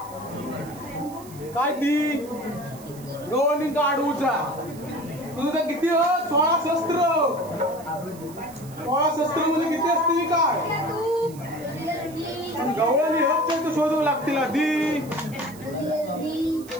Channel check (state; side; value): noise; right; hiss, 20 dB below the sound